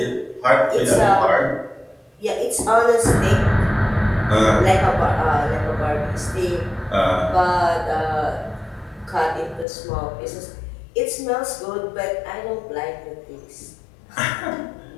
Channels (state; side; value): drops out; right; at 9.7 s